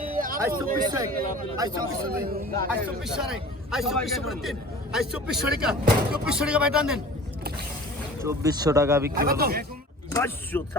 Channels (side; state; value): both; normal; correlation 0.42